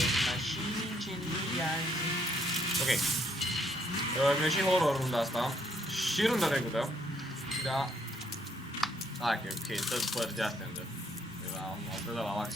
mașini, incendiază. Ok. Mi-a și horror runda asta. Și runda trecută. Da. Hai că ok, tot părți de astea îndă. Am dat la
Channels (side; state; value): both; normal; correlation 0.70